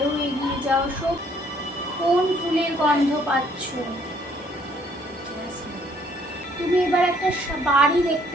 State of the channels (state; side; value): normal; both; correlation 0.64